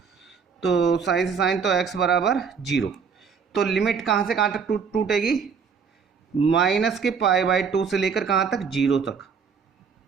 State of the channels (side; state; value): left; quieter; 6.1 dB